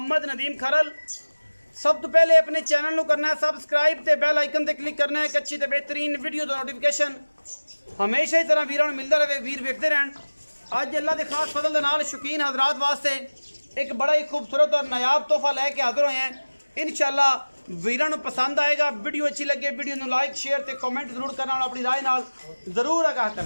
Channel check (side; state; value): both; inverted; correlation -1.00